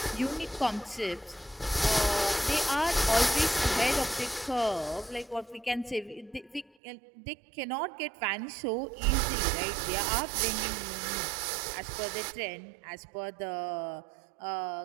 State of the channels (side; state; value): left; drops out; at 6.7 s